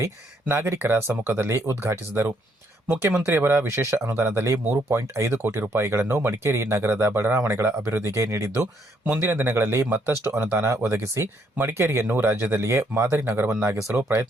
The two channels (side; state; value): both; normal; correlation 0.71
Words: ನಾಗರಿಕರ ಸಮ್ಮುಖದಲ್ಲಿ ಉದ್ಘಾಟಿಸಿದರು. ಮುಖ್ಯಮಂತ್ರಿಯವರ ವಿಶೇಷ ಅನುದಾನದಲ್ಲಿ 3.5 ಕೋಟಿ ರೂಪಾಯಿಗಳನ್ನು ಮಡಿಕೇರಿ ನಗರದ ಬಡಾವಣೆಗಳ ಅಭಿವೃದ್ಧಿಗೆ ನೀಡಿದ್ದು, ಮುಂದಿನ ದಿನಗಳಲ್ಲಿ ಮತ್ತಷ್ಟು ಅನುದಾನ ಒದಗಿಸಿ ಮಡಿಕೇರಿಯನ್ನು ರಾಜ್ಯದಲ್ಲಿಯೇ ಮಾದರಿ ನಗರವನ್ನಾಗಿಸಲು